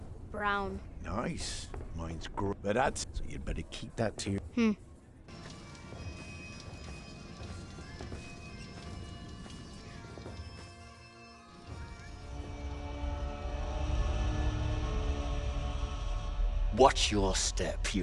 Brown. Nice. Mine's grey. But that's... So you'd better keep that to your... Watch your step,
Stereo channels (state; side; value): identical; both; correlation 1.00